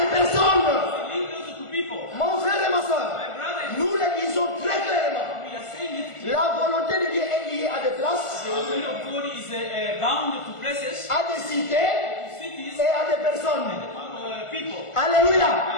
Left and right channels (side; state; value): right; late; 1.5 ms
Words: des personnes. linked also to people. Mon frère et ma soeur, My brother, nous le disons très clairement. we are saying it clearly. La volonté de Dieu est liée à des places, The will of God is bound to places, à des cités cities, et à des personnes. people. Alléluia.